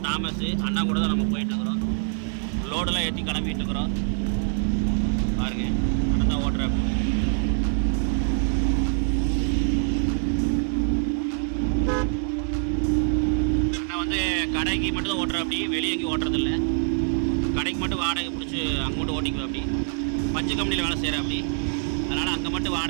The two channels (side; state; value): left; silent; 62 dB below the other